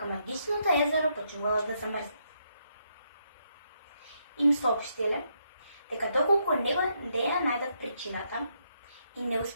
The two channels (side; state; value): both; inverted; correlation -0.77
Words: магичното езеро почнувало да замрзне. Им соопштиле дека доколку не ја најдат причината и не